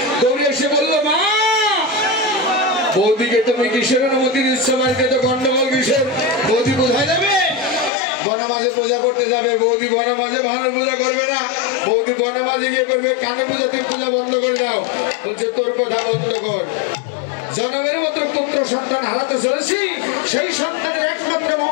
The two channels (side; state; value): right; drops out; at 7.9 s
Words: দৌড়ে এসে বলল মা বৌদিকে তুমি কিসের অনুমতি দিচ্ছ বাড়িতে তো গন্ডগোল কিসের বৌদি কোথায় যাবে বড় মাঝে পূজা করতে যাবে বৌদি বড় মাঝে ভালো পূজা করবে না বৌদি বড় মাঝে গিয়ে করবে কানে পূজাতে পূজা বন্ধ করে দাও বলছে তোর কথা বন্ধ কর জনমের মতো পুত্র সন্তান হারাতে চলেছি সেই সন্তানের একমাত্র